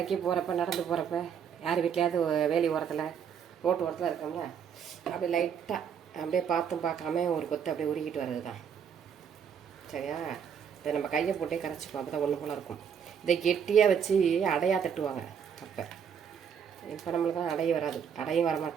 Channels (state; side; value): quieter; left; 7.6 dB